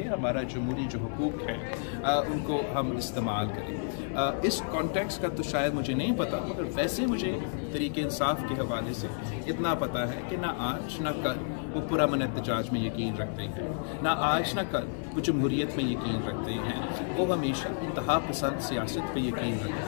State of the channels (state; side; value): silent; right; digital silence